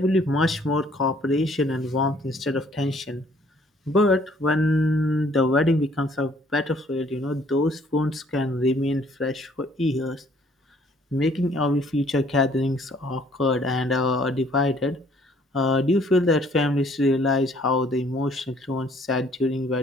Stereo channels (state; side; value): normal; both; correlation 0.61